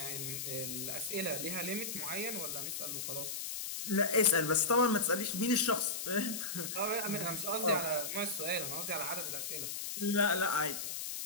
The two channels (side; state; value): left; noise; hiss, 4 dB below the sound